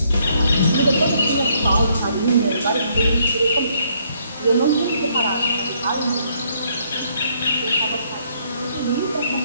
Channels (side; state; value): both; inverted; correlation -0.69